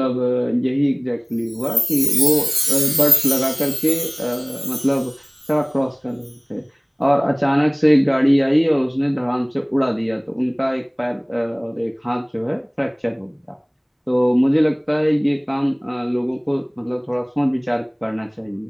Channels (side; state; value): both; identical; correlation 1.00